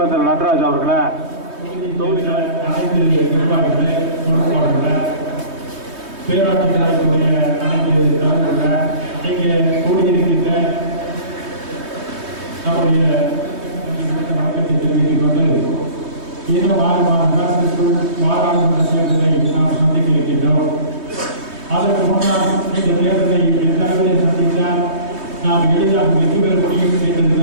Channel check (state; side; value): late; left; 3.2 ms